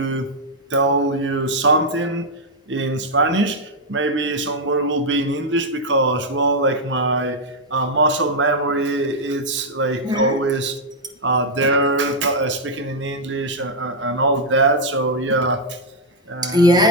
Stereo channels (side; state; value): both; normal; correlation -0.02